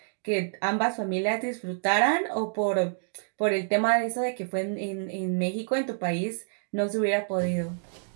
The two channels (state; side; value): silent; left; digital silence